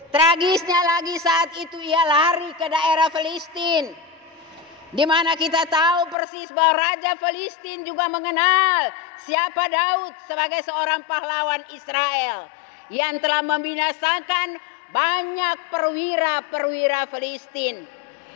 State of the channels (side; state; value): right; drops out; at 6.2 s